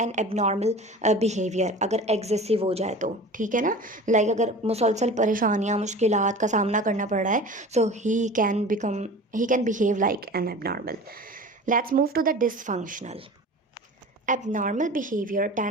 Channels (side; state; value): both; normal; correlation 0.38